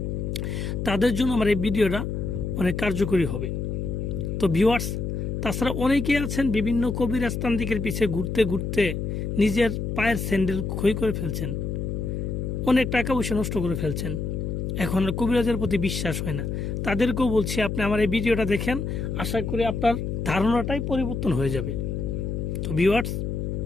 তাদের জন্য আমার এই ভিডিওটা অনেক কার্যকরী হবে। তো ভিউয়ার্স, তাছাড়া অনেকেই আছেন বিভিন্ন কবিরাজ তান্ত্রিকের পিছে ঘুরতে ঘুরতে নিজের পায়ের স্যান্ডেল ক্ষয় করে ফেলছেন, অনেক টাকা পয়সা নষ্ট করে ফেলছেন, এখন আর কবিরাজের প্রতি বিশ্বাস হয় না। তাদেরকেও বলছি, আপনি আমার এই ভিডিওটা দেখেন, আশা করি আপনার ধারণাটাই পরিবর্তন হয়ে যাবে। তো ভিউয়ার্স,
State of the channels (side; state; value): left; noise; hum, 3 dB below the sound